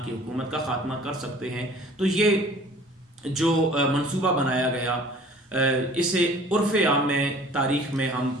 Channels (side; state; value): both; normal; correlation 0.49